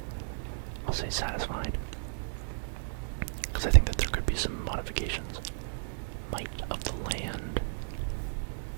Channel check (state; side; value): silent; left; digital silence